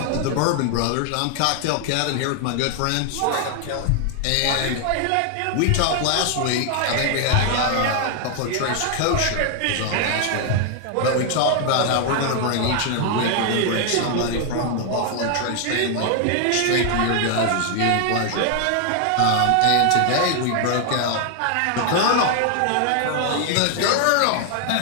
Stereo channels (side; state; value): both; different; correlation 0.00